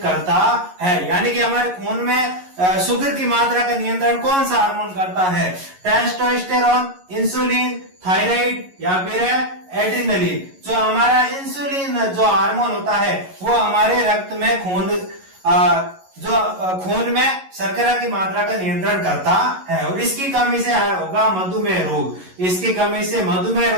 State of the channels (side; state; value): left; late; 11 ms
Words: करता है, यानी कि हमारे खून में शुगर की मात्रा का नियंत्रण कौन सा हार्मोन करता है? टेस्टोस्टेरोन, इंसुलिन, थायराइड या फिर एड्रेनलिन। जो हमारा इंसुलिन जो हार्मोन होता है वो हमारे रक्त में खून में शर्करा की मात्रा का नियंत्रण करता है, और इसकी कमी से होगा मधुमेह रोग। इसकी कमी से मधुमेह